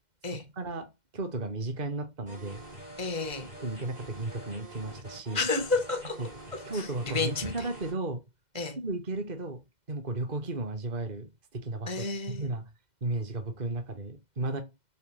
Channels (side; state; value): left; late; 2.0 ms